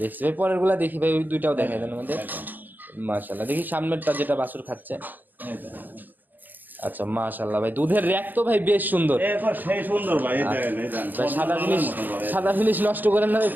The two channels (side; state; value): left; late; 0.087 ms